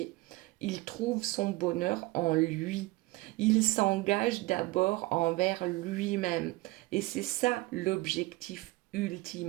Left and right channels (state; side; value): quieter; left; 21.3 dB